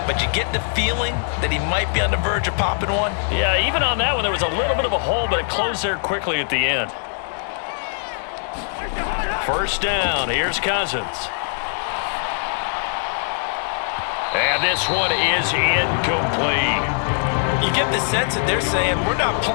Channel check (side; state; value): right; silent; digital silence